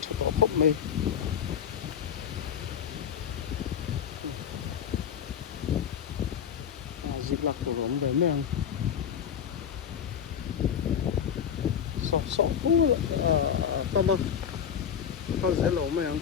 thu ko khop mai dịch lạc của giống để men so cool tama tao sẽ lỗ mày ăn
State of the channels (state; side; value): quieter; right; 8.2 dB